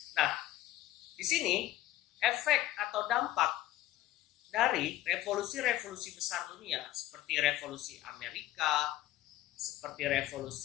Nah, di sini efek atau dampak dari revolusi-revolusi besar dunia seperti revolusi Amerika, seperti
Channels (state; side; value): quieter; right; 14.6 dB